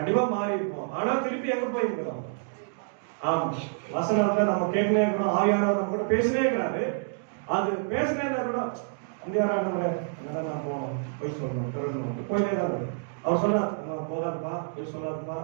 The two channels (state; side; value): silent; left; digital silence